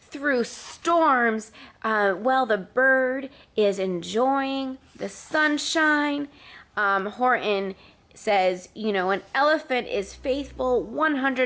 through storms while the bird is enjoying the sunshine. Horton says, you know, an elephant is faithful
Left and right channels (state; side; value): identical; both; correlation 1.00